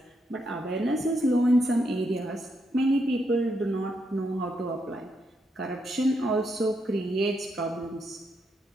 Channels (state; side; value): normal; both; correlation 0.79